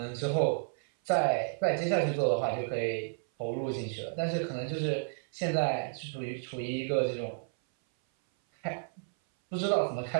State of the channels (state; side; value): silent; left; 57 dB below the other